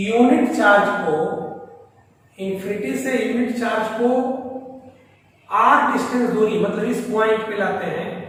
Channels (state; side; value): identical; both; correlation 1.00